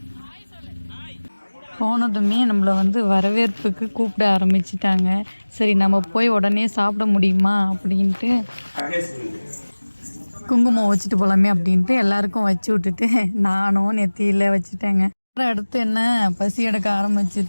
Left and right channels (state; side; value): inverted; both; correlation -1.00